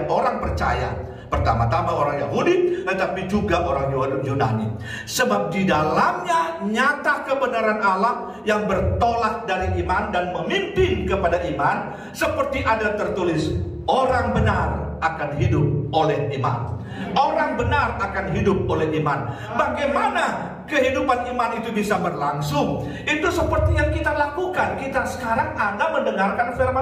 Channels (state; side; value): identical; both; correlation 1.00